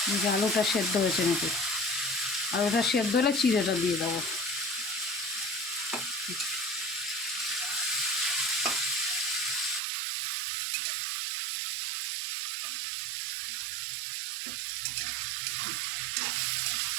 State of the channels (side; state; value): left; drops out; at 9.8 s